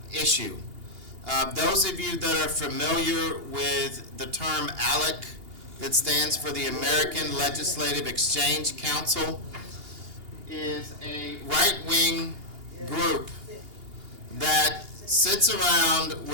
issue. Those of you that are familiar with the term ALEC, that stands for the American Legislative Exchange Council, is a right-wing group that sits around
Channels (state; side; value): late; left; 2.8 ms